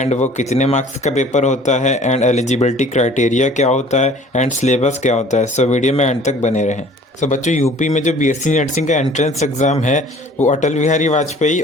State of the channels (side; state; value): both; normal; correlation 0.50